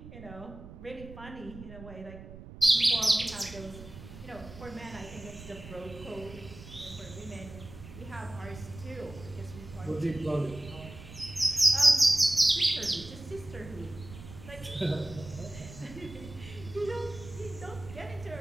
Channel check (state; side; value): noise; right; rumble, 15 dB below the sound